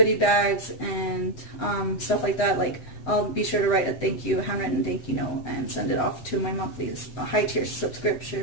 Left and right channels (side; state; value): right; late; 7.9 ms